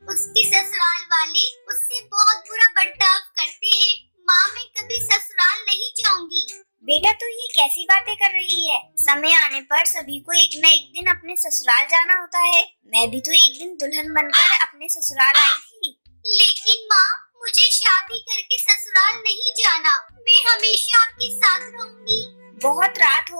उसके ससुराल वाले उससे बहुत बुरा बर्ताव करते हैं। माँ मैं कभी ससुराल नहीं जाऊंगी। बेटा तू ये कैसी बातें कर रही है? समय आने पर सभी को एक न एक दिन अपने ससुराल जाना होता है। मैं भी तो एक दिन दुल्हन बनकर अपने ससुराल आई थी। लेकिन माँ मुझे शादी करके ससुराल नहीं जाना। मैं हमेशा आपके साथ रहूंगी। बहुत रात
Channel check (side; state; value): both; inverted; correlation -1.00